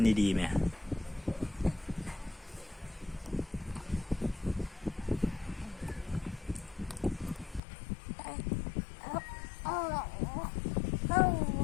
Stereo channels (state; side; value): drops out; right; at 7.6 s